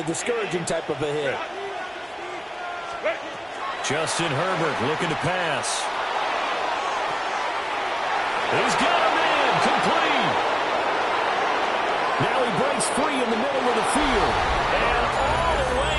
discouraging type of a hit. Justin Herbert looking to pass. He's got him in, complete. Now he breaks free in the middle of the field. And all the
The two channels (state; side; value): identical; both; correlation 1.00